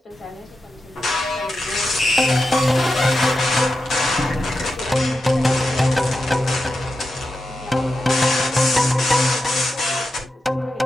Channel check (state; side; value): normal; both; correlation 0.89